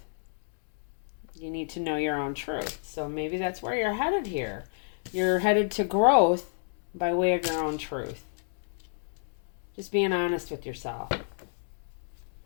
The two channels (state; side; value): silent; right; digital silence